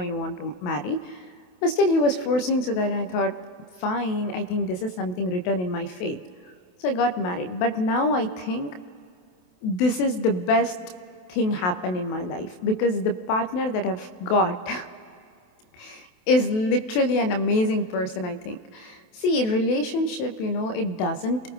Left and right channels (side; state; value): right; late; 28 ms